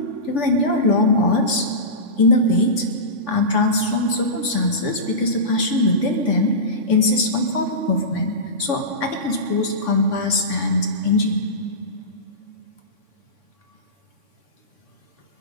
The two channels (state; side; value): late; left; 3.5 ms